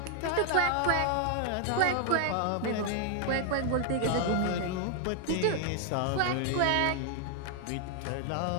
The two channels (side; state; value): both; different; correlation 0.00